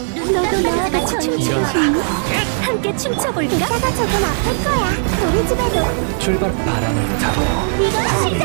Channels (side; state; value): left; silent; digital silence